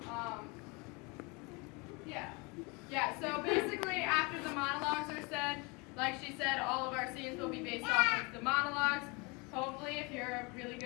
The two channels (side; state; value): right; quieter; 28.7 dB